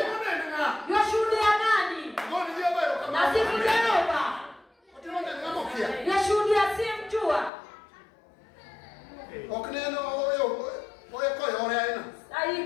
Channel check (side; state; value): right; drops out; at 7.5 s